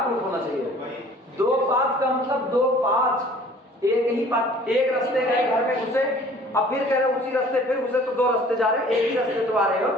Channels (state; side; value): normal; both; correlation 0.51